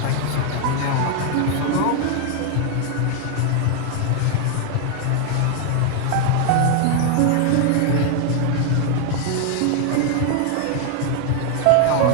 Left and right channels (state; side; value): different; both; correlation 0.00